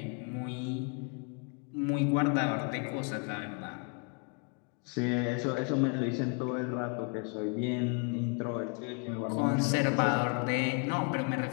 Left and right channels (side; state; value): right; quieter; 35.9 dB